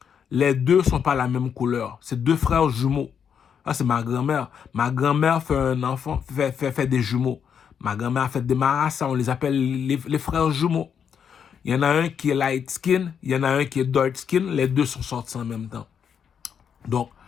les deux ne sont pas la même couleur. C'est deux frères jumeaux. Ah, c'est ma grand-mère. Ma grand-mère fait un enfant, fait des jumeaux. Ma grand-mère fait des marassas, on les appelle les frères jumeaux. Il y en a un qui est light skin, il y en a un qui est dark skin. Les deux sont sortis en même temps. Donc,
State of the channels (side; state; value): right; quieter; 7.6 dB